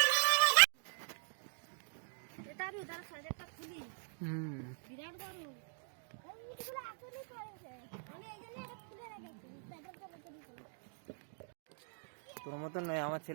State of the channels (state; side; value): silent; left; digital silence